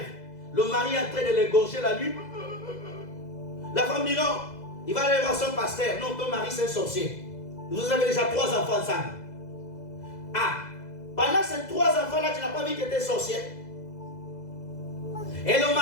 Le mari est en train de l'égorger la nuit. La femme dit non. Il va aller voir son pasteur. Non, ton mari c'est un sorcier. Vous avez déjà 3 enfants ensemble. Ah, pendant ces 3 enfants-là, tu n'as pas vu que tu étais sorcier. Et le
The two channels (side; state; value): right; late; 2.0 ms